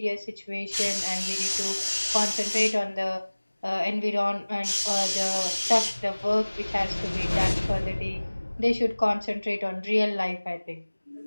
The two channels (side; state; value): both; inverted; correlation -1.00